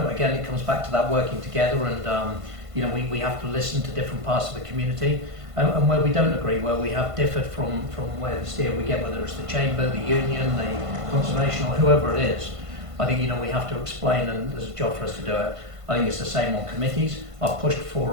Again, it comes back to that working together, and you know, we have to listen to different parts of the community, and where we don't agree, where we have differed from where the steer we get, whether it's the Chamber, the Union, the Conservation, or whoever it is. I think, you know, we have to explain, and there's a job for us to do it. I think it's the same on committees. I've pushed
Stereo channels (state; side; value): late; left; 1.5 ms